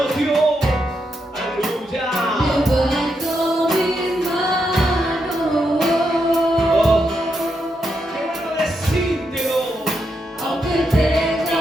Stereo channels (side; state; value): both; normal; correlation 0.82